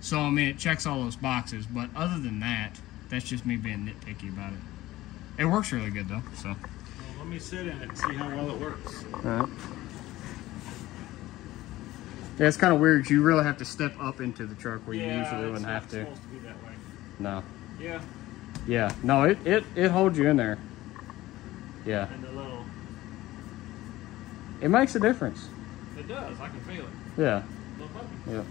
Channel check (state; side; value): quieter; right; 16.7 dB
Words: I mean, it checks all those boxes. But other than that, that's just me being nitpicky about it. It works really good, though, so. Well, let me sit in it and see how well it works. All right. Yeah, it's kind of weird. You really have to step up into the truck where you usually wouldn't have to. Yeah, it's supposed to be that way. No. Yeah. Yeah. No, it holds you in there. Yeah. And the little... It makes a difference. It does. I can feel it. Yeah. Yeah.